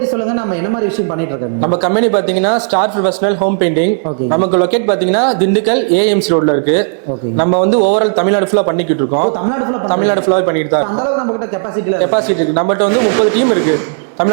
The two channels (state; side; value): silent; left; digital silence